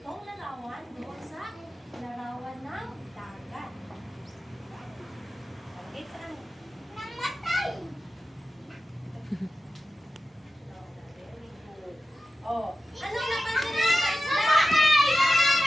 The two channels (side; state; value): both; normal; correlation 0.93